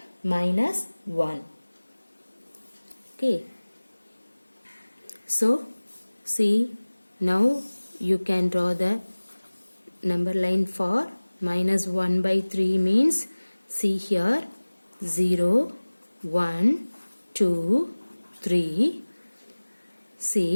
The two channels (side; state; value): both; inverted; correlation -1.00